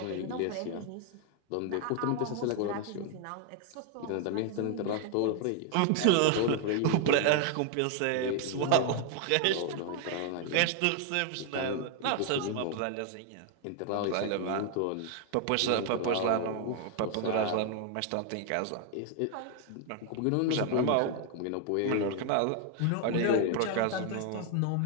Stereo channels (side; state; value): both; different; correlation 0.00